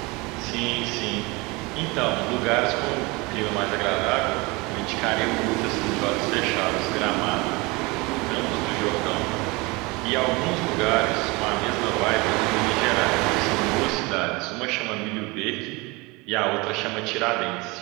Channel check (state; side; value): quieter; left; 25.1 dB